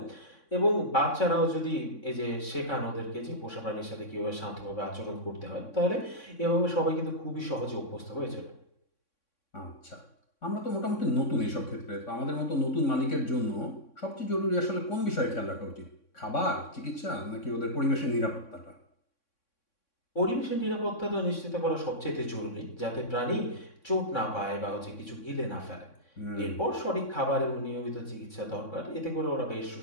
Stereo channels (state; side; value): late; right; 3.6 ms